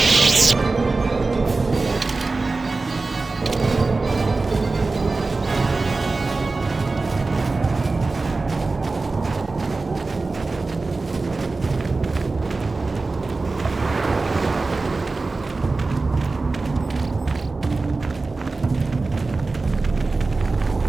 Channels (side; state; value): left; quieter; 3.6 dB